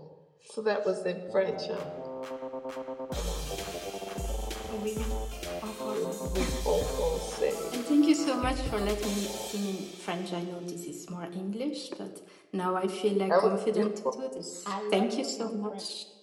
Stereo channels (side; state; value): both; identical; correlation 1.00